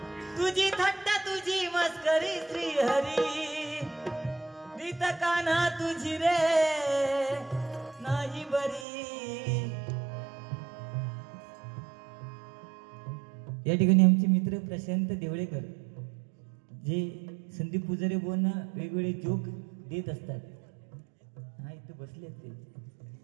तुझी थट्टा तुझी मस्करी श्रीहरी रीत कान्हा तुझी रे नाही बरी. या ठिकाणी आमचे मित्र प्रशांत देवळेकर जे संदीप पुजारी बोलना वेगवेगळे जोक देत असतात. हा इथे बसले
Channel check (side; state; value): left; drops out; at 8.8 s